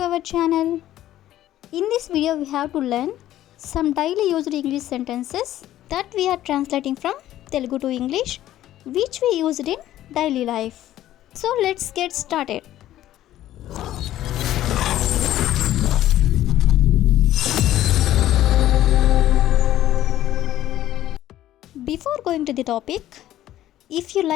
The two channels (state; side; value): quieter; right; 13.3 dB